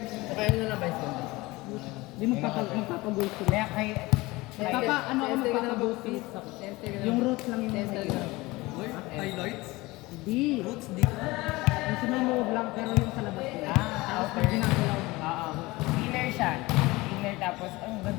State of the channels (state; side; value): quieter; right; 21.3 dB